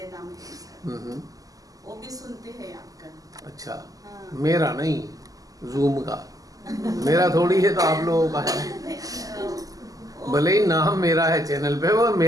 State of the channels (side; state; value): left; late; 0.17 ms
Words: नाम है, वो भी सुनते हैं आपका। अच्छा, हाँ। मेरा नहीं, जूम का, मेरा थोड़ी है, तो आप लोगों का है। भले ही नाम मेरा है चैनल पे, वो